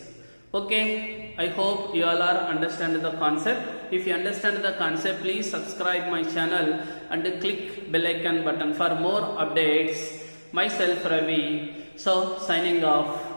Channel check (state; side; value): inverted; both; correlation -1.00